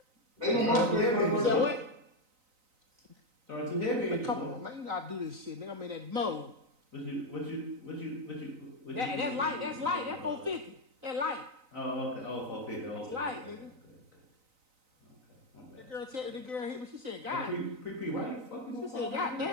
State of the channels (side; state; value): left; late; 3.9 ms